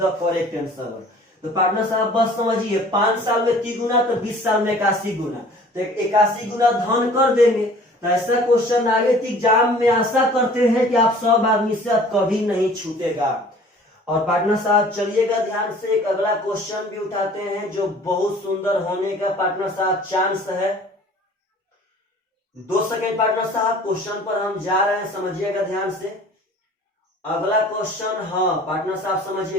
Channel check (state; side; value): normal; both; correlation 0.49